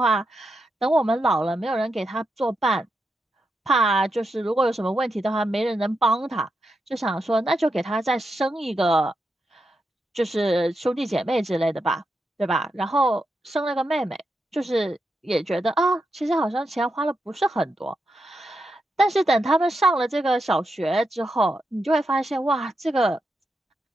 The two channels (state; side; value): normal; both; correlation 0.86